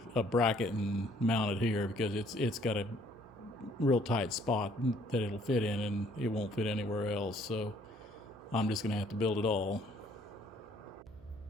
a bracket and mount it here because it's got a real tight spot that it'll fit in, and it won't fit anywhere else. So I'm just going to have to build it all.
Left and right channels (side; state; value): right; noise; hum, 22 dB below the sound